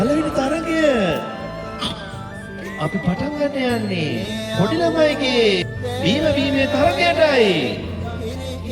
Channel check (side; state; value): both; identical; correlation 1.00